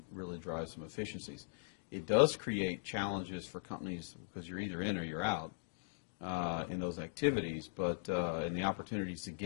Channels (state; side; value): silent; right; digital silence